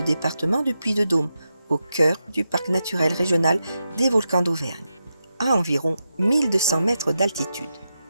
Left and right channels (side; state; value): both; inverted; correlation -0.88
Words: département du Puy-de-Dôme, au cœur du parc naturel régional des volcans d'Auvergne, à environ 1200 mètres d'altitude.